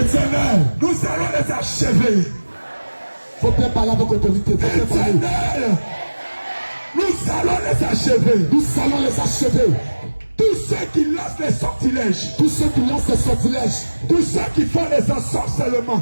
Nous allons les achever. Faut bien parler avec autorité. Éternel. Nous allons les achever. Nous allons les achever. Tous ceux qui lancent les sortilèges, tous ceux qui lancent les sortilèges, tous ceux qui font les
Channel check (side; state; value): both; inverted; correlation -1.00